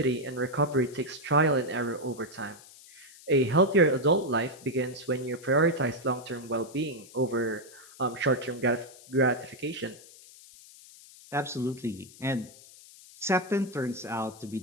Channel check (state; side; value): noise; left; hiss, 21 dB below the sound